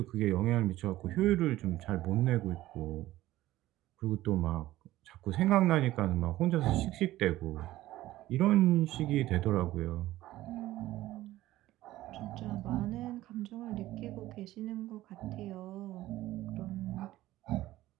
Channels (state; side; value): quieter; left; 15.7 dB